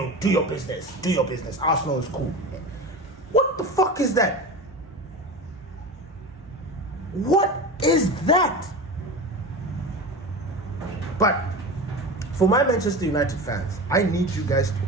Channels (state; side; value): normal; both; correlation 0.28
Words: business. Do your business. Arsenal is cool. What the fuck is that? What is that? But for my Manchester United fans, I need you guys to